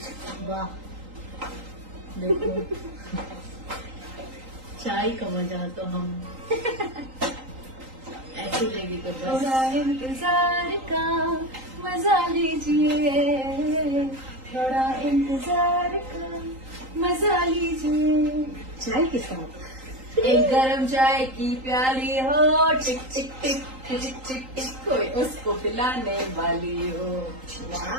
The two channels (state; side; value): late; left; 3.8 ms